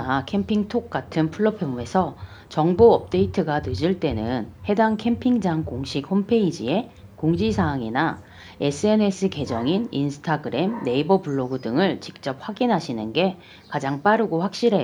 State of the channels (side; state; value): both; identical; correlation 1.00